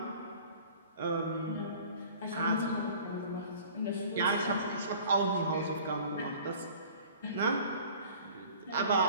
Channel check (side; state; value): both; inverted; correlation -0.47